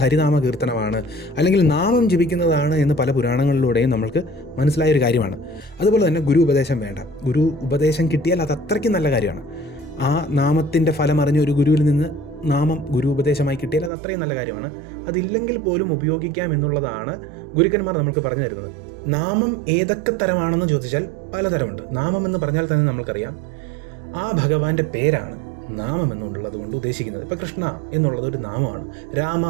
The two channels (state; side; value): drops out; left; at 13.9 s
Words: ഹരിനാമ കീർത്തനമാണ്, അല്ലെങ്കിൽ നാമം ജപിക്കുന്നതാണ് എന്ന് പല പുരാണങ്ങളിലൂടെയും നമ്മൾക്ക് മനസ്സിലായൊരു കാര്യമാണ്. അതുപോലെ തന്നെ ഗുരു ഉപദേശം വേണ്ട. ഗുരു ഉപദേശം കിട്ടിയാൽ അത് അത്രയ്ക്കും നല്ല കാര്യമാണ്. ആ നാമത്തിൻ്റെ ഫലം അറിഞ്ഞ ഒരു ഗുരുവിൽ നിന്ന് നാമം ഗുരു ഉപദേശമായി കിട്ടിയാൽ അത് അത്രയും നല്ല കാര്യമാണ്. അതില്ലെങ്കിൽ പോലും ഉപയോഗിക്കാം എന്നുള്ളതാണ് ഗുരുക്കന്മാർ നമുക്ക് പറഞ്ഞു തരുന്നത്. നാമം ഏതൊക്കെ തരമാണെന്ന് ചോദിച്ചാൽ പലതരമുണ്ട്. നാമം എന്ന് പറഞ്ഞാൽ തന്നെ നമ്മൾക്കറിയാം ആ ഭഗവാന്റെ പേരാണ് നാമം എന്നുള്ളത് കൊണ്ട് ഉദ്ദേശിക്കുന്നത്. ഇപ്പോൾ കൃഷ്ണ എന്നുള്ളത് ഒരു നാമമാണ്, രാമ